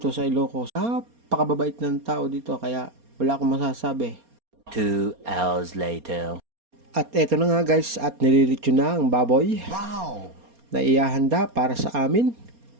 sa Ilocos. Napakababait ng tao dito kaya wala akong masasabi. 2 hours later. At eto na nga guys, at nililitsyon na ang baboy. Wow! Na iahanda para sa amin.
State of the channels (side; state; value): left; late; 4.3 ms